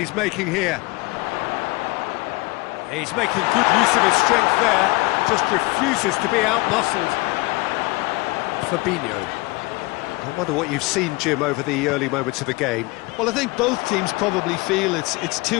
making here. He's making good use of his strength there, just refuses to be out-muscled. Fabinho. I wonder what you've seen, Jim, over the early moments of the game. Well, I think both teams probably feel it's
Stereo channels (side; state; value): right; quieter; 23.7 dB